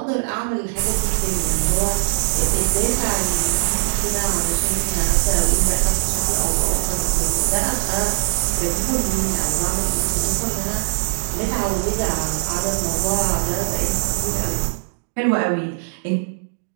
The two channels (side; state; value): left; silent; digital silence